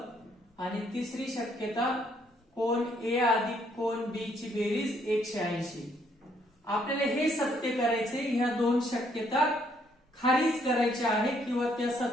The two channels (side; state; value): both; normal; correlation 0.69